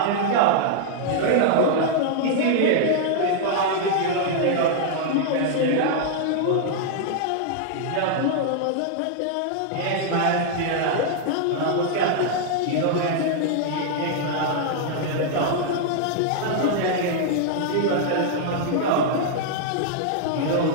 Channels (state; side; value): different; both; correlation -0.01